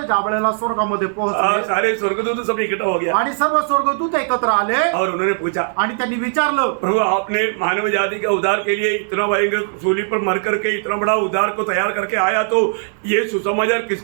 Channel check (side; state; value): left; silent; digital silence